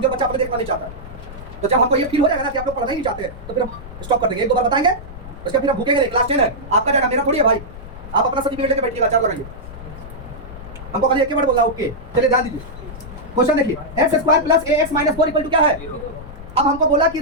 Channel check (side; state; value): left; noise; rumble, 14 dB below the sound